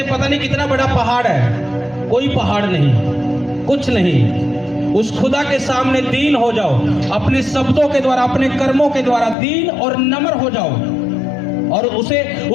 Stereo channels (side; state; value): right; drops out; at 9.3 s